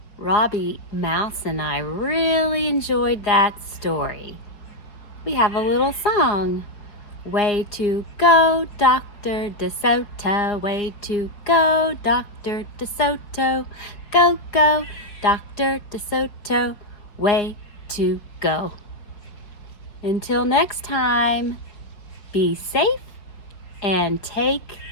Robbie Mouse and I really enjoyed that story. We have a little song. Way to go, Dr. DeSoto. Way to go, Dr. DeSoto. Go, go, Dr. DeSoto. Way to go. Until next time, be safe and take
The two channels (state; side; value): late; right; 4.8 ms